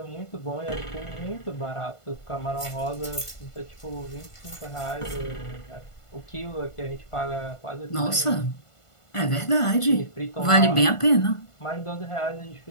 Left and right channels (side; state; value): right; late; 1.5 ms